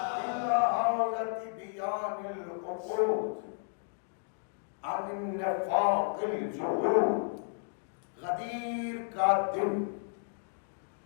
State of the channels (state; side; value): silent; right; digital silence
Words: عن النفاق الجحود، غدیر کا دن